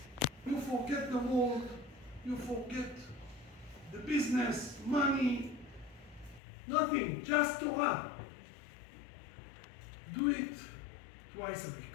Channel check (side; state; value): right; drops out; at 6.4 s